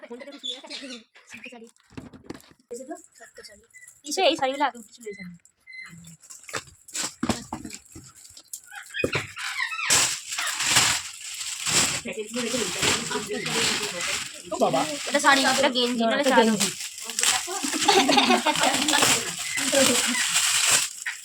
এই শাড়িগুলো আগে উঠে চলে যাবে এটা শাড়ি এটা গেঞ্জি নালে গেঞ্জি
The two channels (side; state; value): both; identical; correlation 1.00